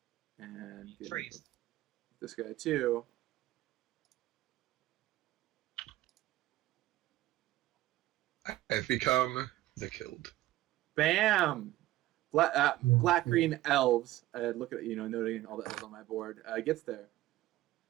And Freeze. This guy too. I've become the killed. Bam! Black green elves. Look at noting all the elves on my board. Gets there.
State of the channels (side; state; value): left; quieter; 16.1 dB